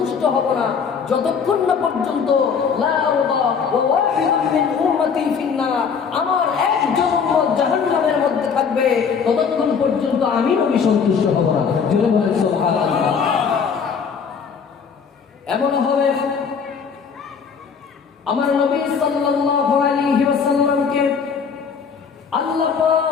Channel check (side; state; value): right; quieter; 6.3 dB